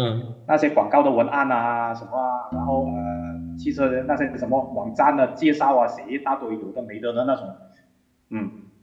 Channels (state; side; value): identical; both; correlation 1.00